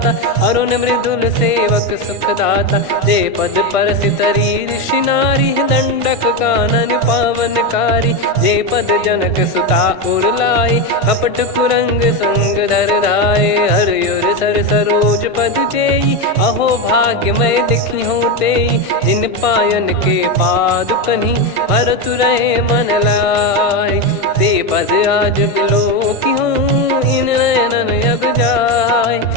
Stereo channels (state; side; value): late; right; 1.5 ms